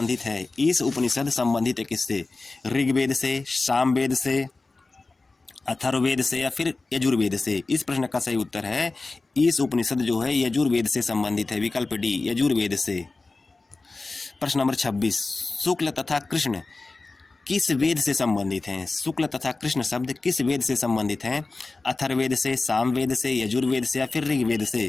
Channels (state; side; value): quieter; right; 3.5 dB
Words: है किससे? ऋग्वेद से, सामवेद से, अथर्ववेद से या फिर यजुर्वेद से? इस प्रश्न का सही उत्तर है इस उपनिषद जो है यजुर्वेद से संबंधित है, विकल्प डी यजुर्वेद से। प्रश्न नंबर 26, शुक्ल तथा कृष्ण किस वेद से संबंधित हैं? शुक्ल तथा कृष्ण शब्द किस वेद से संबंधित हैं? अथर्ववेद से, सामवेद से, यजुर्वेद से या फिर ऋग्वेद